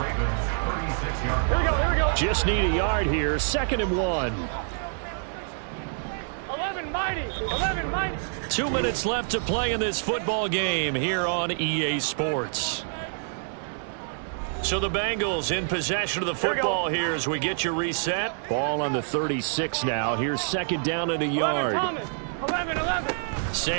Ravens' 36-yard line. Here we go. Just need a yard here. 2nd and 1. 11 mighty. 11 mighty. 2 minutes left to play in this football game here on EA Sports. So the Bengals in possession of the football here as we get you reset. Ball on the 36 now. Here's 2nd down and a yard. 11, 11.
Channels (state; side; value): silent; left; digital silence